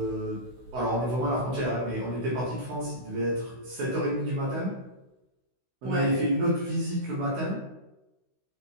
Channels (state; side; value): late; left; 16 ms